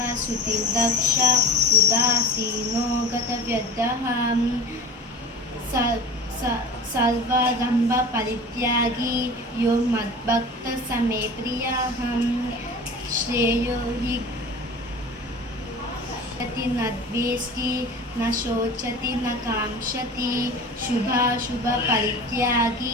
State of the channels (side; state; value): both; normal; correlation 0.37